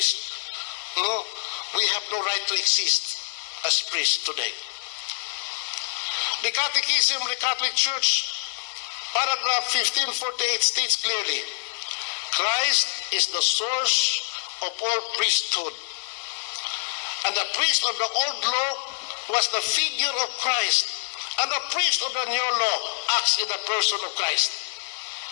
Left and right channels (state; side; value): silent; right; digital silence